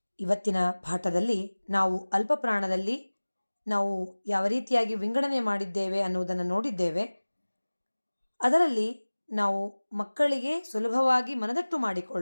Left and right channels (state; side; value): inverted; both; correlation -1.00